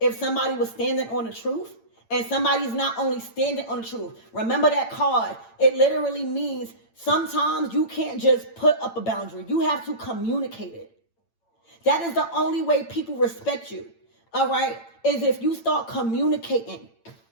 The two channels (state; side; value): late; right; 8.9 ms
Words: somebody was standing on the truth, and somebody's not only standing on the truth, remember that card. It literally means sometimes you can't just put up a boundary. You have to communicate it. That is the only way people respect you, all right, is if you start communicating